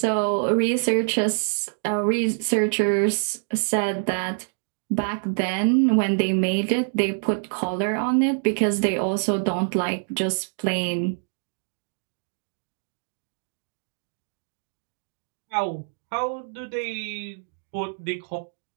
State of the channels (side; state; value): left; silent; digital silence